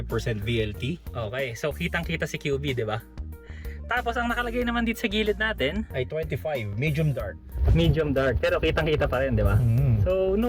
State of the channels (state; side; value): identical; both; correlation 1.00